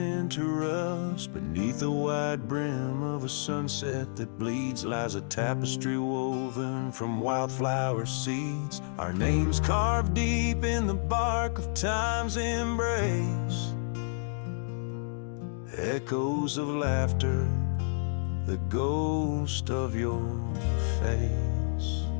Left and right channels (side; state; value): right; silent; digital silence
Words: rust. Beneath the wide brim of a sunset that bleeds lies a tapestry woven from wildflower seeds. Our names carved deep in the bark of time's embrace. Echoes of laughter, the ghost of your face.